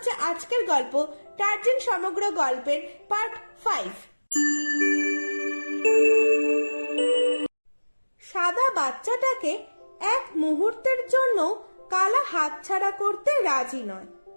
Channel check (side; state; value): both; inverted; correlation -1.00